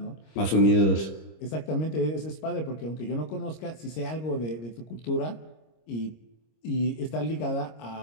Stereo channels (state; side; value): late; right; 26 ms